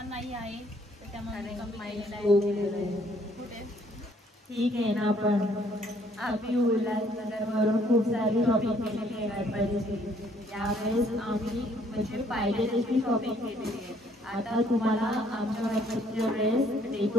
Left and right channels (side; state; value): both; normal; correlation 0.64